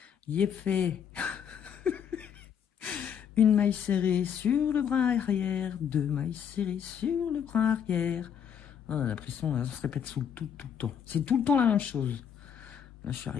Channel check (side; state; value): right; quieter; 8.2 dB